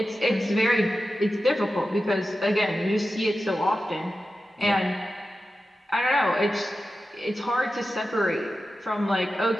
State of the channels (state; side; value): normal; both; correlation 0.92